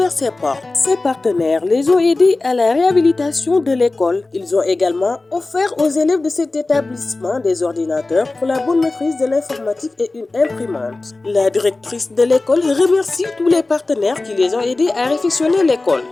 ses portes. Ces partenaires les ont aidés à la réhabilitation de l'école. Ils ont également offert aux élèves de cet établissement des ordinateurs pour la bonne maîtrise de l'informatique et une imprimante. La directrice de l'école remercie tous les partenaires qui les ont aidés à réfectionner l'école.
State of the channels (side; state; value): right; quieter; 3.2 dB